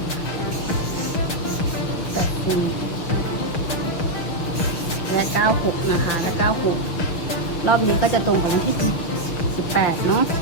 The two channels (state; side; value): late; right; 6.7 ms